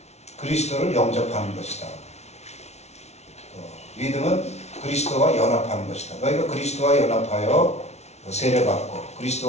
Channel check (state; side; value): late; right; 0.32 ms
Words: 그리스도를 영접하는 것이다. 믿음은 그리스도와 연합하는 것이다. 너희가 그리스도와 연합하여 세례받고